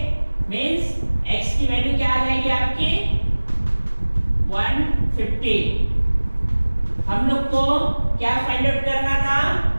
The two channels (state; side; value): inverted; both; correlation -1.00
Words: मीन्स x की वैल्यू क्या आ जाएगी आपकी 150। हम लोग को क्या फाइंड आउट करना था,